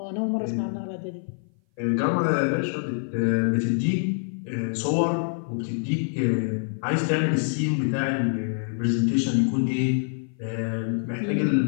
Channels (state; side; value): silent; right; 57 dB below the other